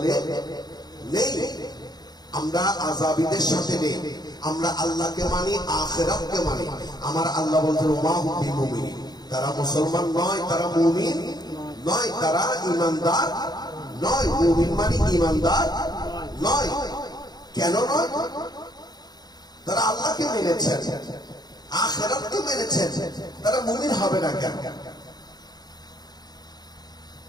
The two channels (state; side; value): late; right; 0.20 ms